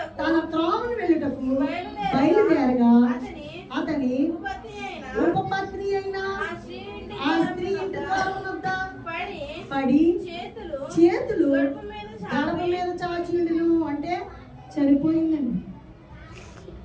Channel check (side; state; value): both; identical; correlation 1.00